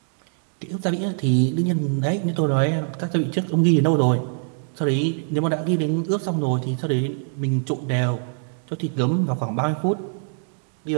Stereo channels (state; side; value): silent; left; 63 dB below the other